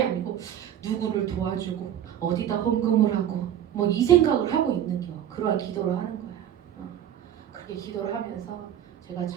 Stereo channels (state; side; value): quieter; left; 10.4 dB